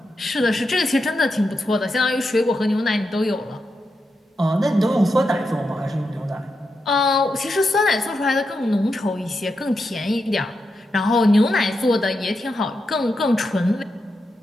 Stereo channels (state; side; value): normal; both; correlation 0.86